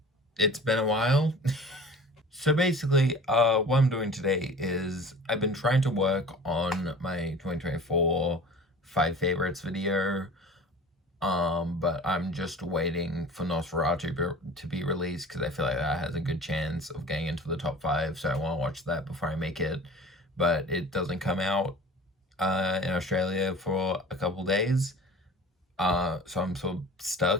it's been a while. So basically, what I'm doing today is I've been trying to work on my 2024 5 favorites video, but I'm just waiting for Nosferatu to be released because I feel like that has a good chance of getting into the top 5, so I want to watch that before I make it. But it doesn't come out in Australia for a couple days, so I'm sort of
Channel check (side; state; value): both; normal; correlation 0.41